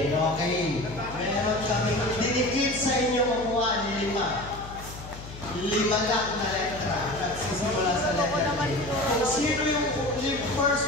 Okay. Meron kami dinikit sa inyong upuan, 5. 5 lang na letra. Nagsisimula sa letra. Kung sino yung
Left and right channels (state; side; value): noise; left; hum, 14 dB below the sound